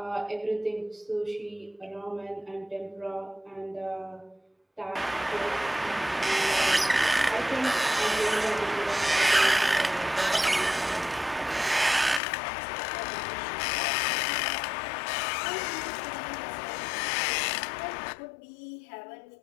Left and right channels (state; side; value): drops out; right; at 12.2 s